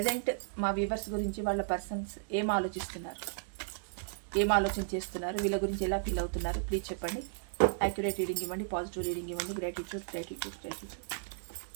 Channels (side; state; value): left; silent; digital silence